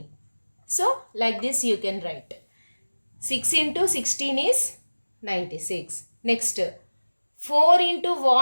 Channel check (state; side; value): inverted; both; correlation -1.00